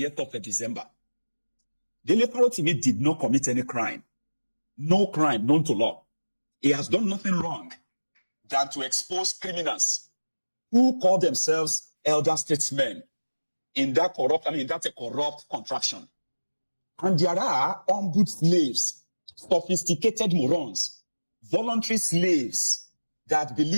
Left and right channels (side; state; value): both; inverted; correlation -1.00